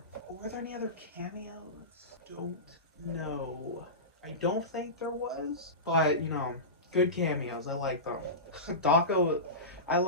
Were there any other cameos? Don't know. I don't think there was, but you know, good cameos. I like them. Daco, I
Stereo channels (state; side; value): normal; both; correlation -0.20